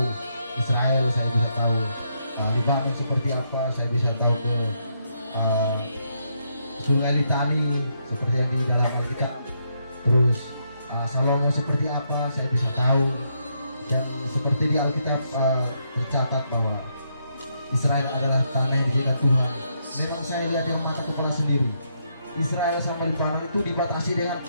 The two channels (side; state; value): both; inverted; correlation -0.77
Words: Israel, saya bisa tahu Libanon seperti apa, saya bisa tahu ke Sungai Litani seperti yang di dalam Alkitab. Terus Salomo seperti apa, saya bisa tahu. Dan seperti di Alkitab tercatat bahwa Israel adalah tanah yang diberikan Tuhan. Memang saya lihat dengan mata kepala sendiri, Israel sama Libanon itu dibatasi dengan